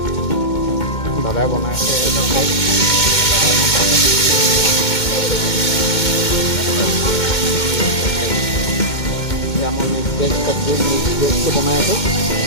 দাদাই বনাই আছে। এয়া মই মিক্স ভেজ চব্জি, মিক্স ভেজটো বনাই আছোঁ।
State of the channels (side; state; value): right; late; 2.2 ms